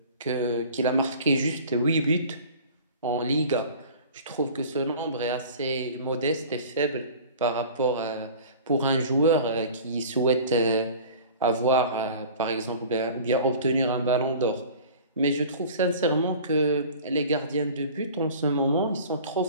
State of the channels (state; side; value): inverted; both; correlation -0.43